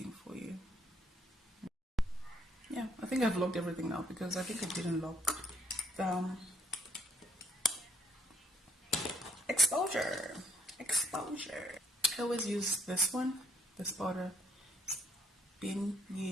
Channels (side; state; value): both; normal; correlation 0.67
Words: for you. Yeah, I think I've locked everything now because I think I didn't lock the exposure. I always use this one, this powder.